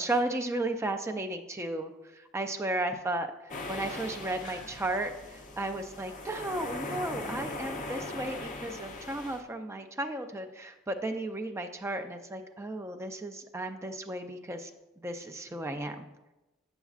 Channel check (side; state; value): both; normal; correlation 0.55